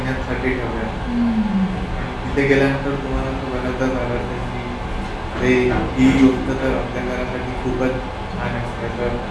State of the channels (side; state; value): both; identical; correlation 1.00